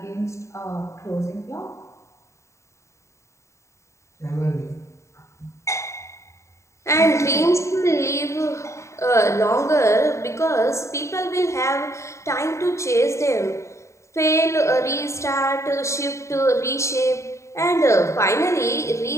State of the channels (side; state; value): right; late; 0.14 ms